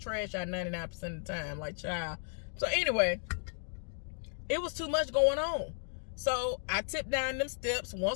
out 99% of the time, like, child. So anyway, it was too much going on. So I tipped down them steps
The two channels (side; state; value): right; silent; digital silence